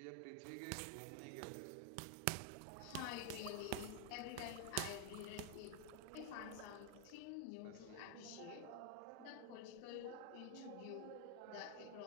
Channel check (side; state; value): both; different; correlation 0.00